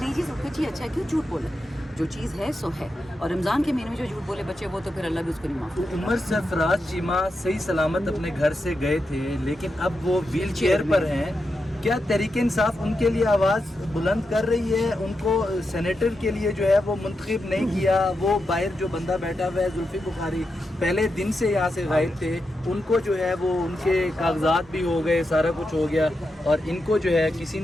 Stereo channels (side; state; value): both; normal; correlation 0.87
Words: یہ چیز کچھ ہی اچھا ہے، کیوں جھوٹ بولے؟ جو چیز ہے سو ہے، اور رمضان کے مہینے میں جو جھوٹ بولے بچے وہ تو پھر اللہ بھی اس کو نہیں معاف کرے۔ عمر سرفراز چیمہ صحیح سلامت اپنے گھر سے گئے تھے، لیکن اب وہ ویل چیئر پر ہیں۔ کیا تحریک انصاف ان کے لیے آواز بلند کر رہی ہے؟ ان کو سینیٹر کے لیے جو ہے وہ منتخب نہیں کیا، وہ باہر جو بندہ بیٹھا ہوا ہے زلفی بخاری پہلے دن سے یہاں سے غائب تھے، ان کو جو ہے وہ ان کے کاغذات بھی ہو گئے، سارا کچھ ہو گیا، اور ان کو جو ہے کسی